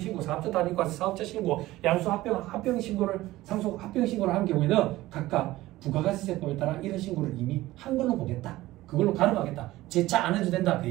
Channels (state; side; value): quieter; left; 17.1 dB